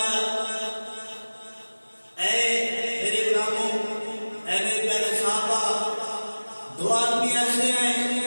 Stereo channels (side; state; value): both; inverted; correlation -1.00